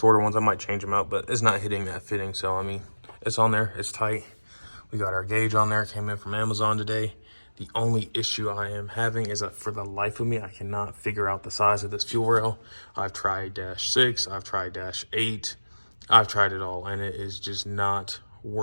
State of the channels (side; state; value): both; inverted; correlation -1.00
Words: ones. I might change them out, but it's not hitting that fitting. So, I mean, it's on there. It's tight. We got our gauge on there. It came in from Amazon today. The only issue I am having is that for the life of me, I cannot figure out the size of this fuel rail. I've tried -6. I've tried -8. I've tried it all, and it is just not